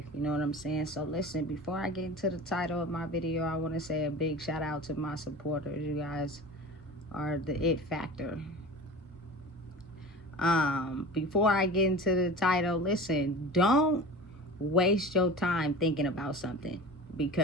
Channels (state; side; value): normal; both; correlation 0.35